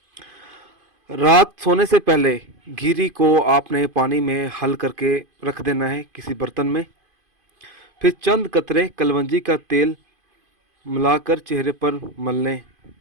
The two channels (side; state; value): left; late; 2.5 ms